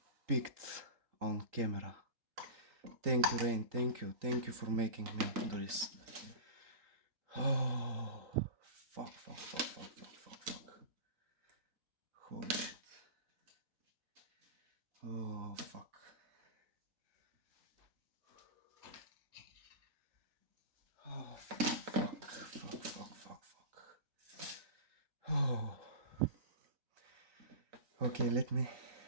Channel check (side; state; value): left; late; 3.9 ms